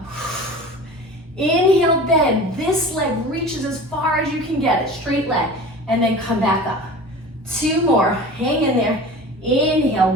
Inhale, bend. This leg reaches as far as you can get it, straight leg, and then come back up. 2 more, hang in there. Inhale,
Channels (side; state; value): both; normal; correlation 0.37